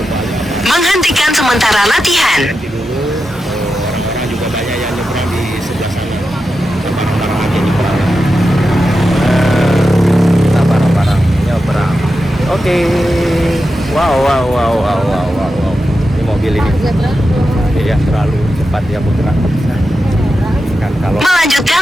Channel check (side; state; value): both; normal; correlation 0.90